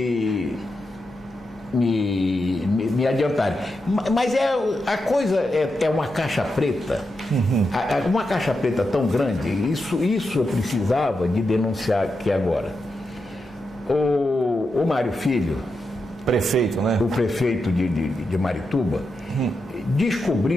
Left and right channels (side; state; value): both; normal; correlation 0.87